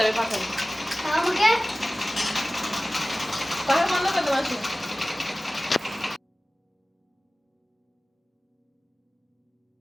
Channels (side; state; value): both; normal; correlation 0.97